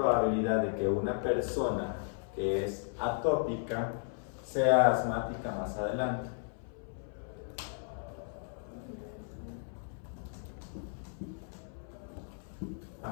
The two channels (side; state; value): right; silent; 55 dB below the other